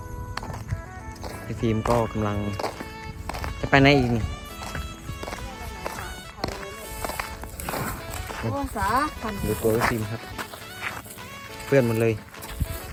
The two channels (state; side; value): identical; both; correlation 1.00